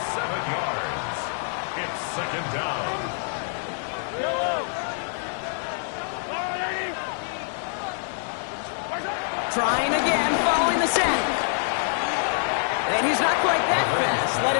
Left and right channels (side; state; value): right; silent; digital silence